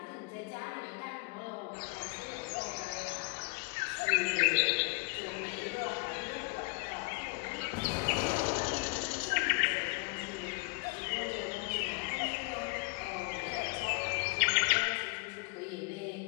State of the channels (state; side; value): quieter; right; 29.5 dB